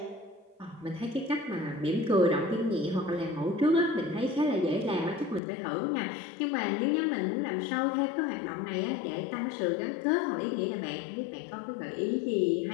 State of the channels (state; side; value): drops out; right; at 5.4 s